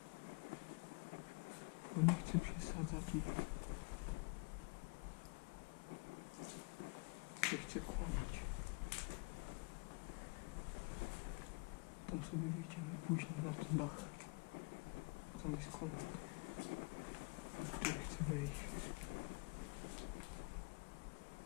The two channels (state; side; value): quieter; right; 30.4 dB